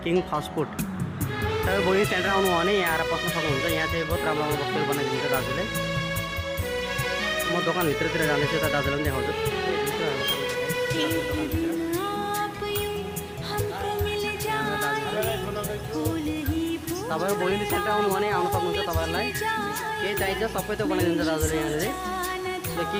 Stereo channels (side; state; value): both; identical; correlation 1.00